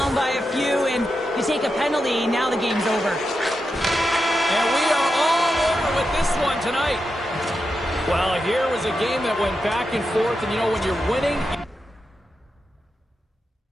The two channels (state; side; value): normal; both; correlation 0.88